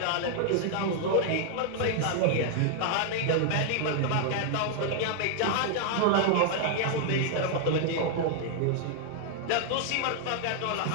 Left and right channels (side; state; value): both; different; correlation 0.00